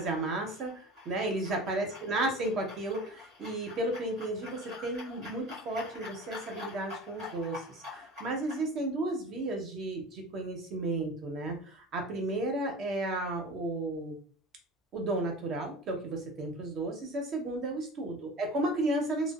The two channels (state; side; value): normal; both; correlation 0.36